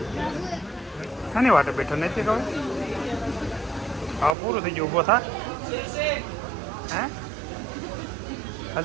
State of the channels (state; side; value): drops out; left; at 4.4 s